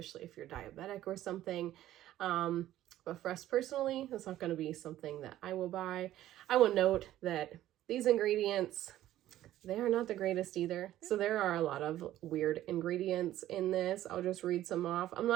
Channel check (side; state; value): left; quieter; 13.6 dB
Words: if you're diabetic or something. But for us personally, it's not going to be something that I will buy. I will note that these ingredients, they are not the greatest either. So there are a lot of weird ingredients in this. I'll just read some off. I'm